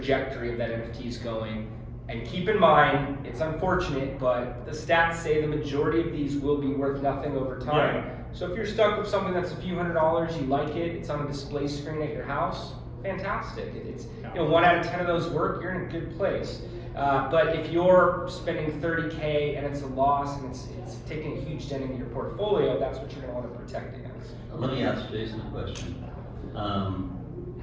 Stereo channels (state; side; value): identical; both; correlation 1.00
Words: of that NFT is going. And keep in mind, it's unfortunate, but the stats say the majority of these will be worth nothing over time. Yeah. So if you're stuck with something that's a few $100s, you like it, it's on a display screen at your house, fantastic. It's 1 out of 10 of those work, you're in a good place. But if you're spending 30K and it's a loss and it's taking a huge dent into your portfolio, that's what you're going to want to protect against. Let me ask Jason a question.